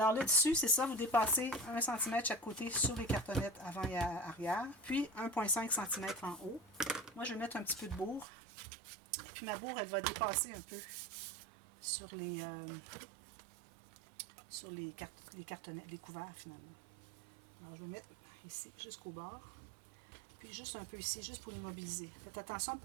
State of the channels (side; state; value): left; drops out; at 8.2 s